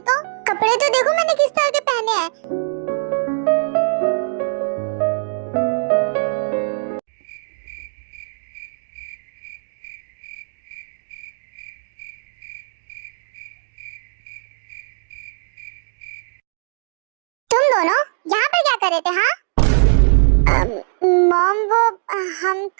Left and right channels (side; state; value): left; silent; digital silence